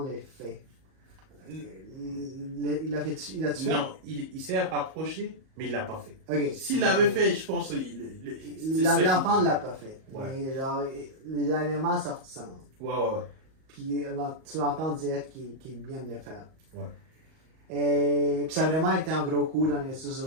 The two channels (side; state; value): left; late; 38 ms